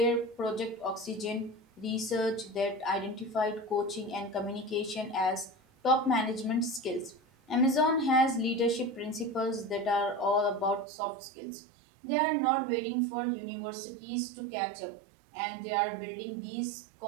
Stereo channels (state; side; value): drops out; left; at 10.9 s